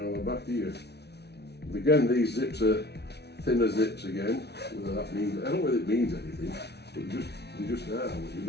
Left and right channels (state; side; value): late; right; 0.49 ms